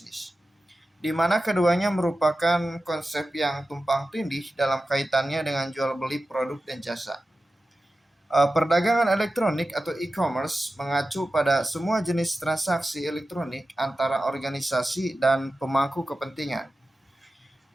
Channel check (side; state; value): both; normal; correlation 0.94